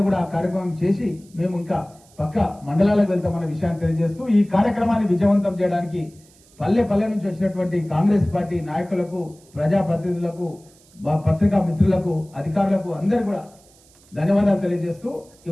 కూడా ఆ కార్యక్రమం చేసి మేము ఇంకా పక్క మండలాలకు వెళ్తామన్న విషయాన్ని తెలియజేస్తూ, ఈ కార్యక్రమాన్ని విజయవంతం చేయడానికి పల్లె నుంచి వచ్చినటువంటి కాంగ్రెస్ పార్టీ నాయకులకు, ప్రజాప్రతినిధులకు, పత్రికా మిత్రులకు, అధికారులకు అందరూ కూడా ధన్యవాదాలు తెలియజేస్తూ,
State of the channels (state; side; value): noise; right; hiss, 29 dB below the sound